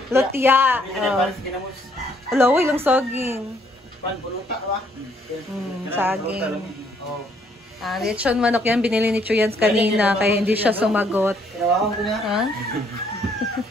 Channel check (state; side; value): normal; both; correlation 0.67